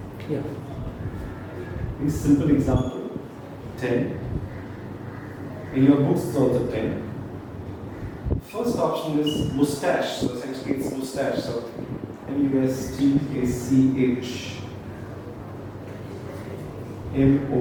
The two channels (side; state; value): both; identical; correlation 1.00